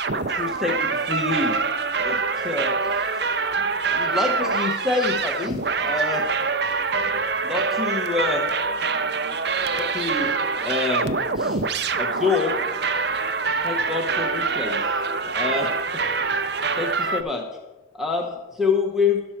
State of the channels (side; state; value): both; normal; correlation 0.11